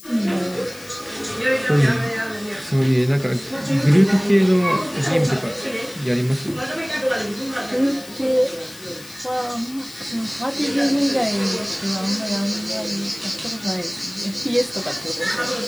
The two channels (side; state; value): left; noise; hiss, 18 dB below the sound